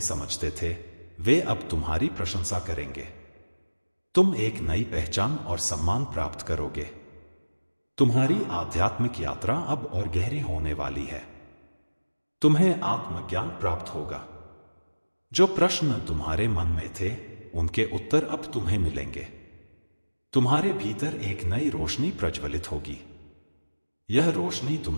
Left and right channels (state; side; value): inverted; both; correlation -1.00